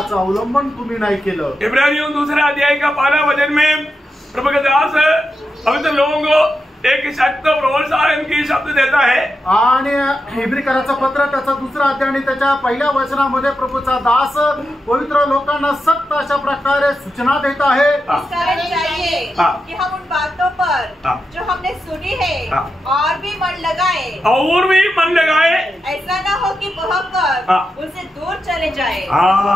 अवलंबन तुम्ही नाही केलं. इब्रानियों 2 अध्याय का 12 वचन में प्रभु के दास पवित्र लोगों को एक सख्त प्रोत्साहन की शब्द देता है. आणि इब्रिकराचं पत्र त्याचा 2 अध्याय आणि त्याच्या पहिल्या वचनामध्ये प्रभूचा दास पवित्र लोकांना सक्त अशा प्रकारे सूचना देत आहे. इस कारण चाहिए कि हम उन बातों पर जो हमने सुनी है और भी मन लगाए, ऐसा ना हो कि बहकर उनसे दूर चले जाए.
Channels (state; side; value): normal; both; correlation 0.88